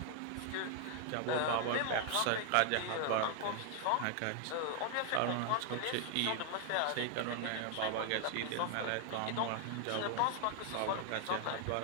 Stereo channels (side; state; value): both; different; correlation 0.00